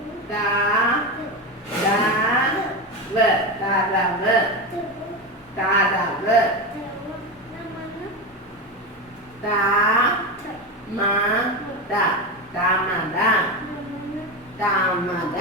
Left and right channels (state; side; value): normal; both; correlation 0.18